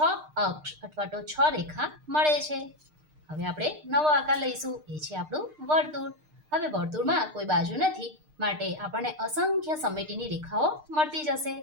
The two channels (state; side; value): late; left; 6.6 ms